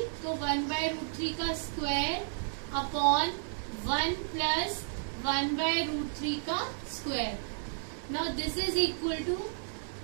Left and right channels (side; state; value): left; silent; digital silence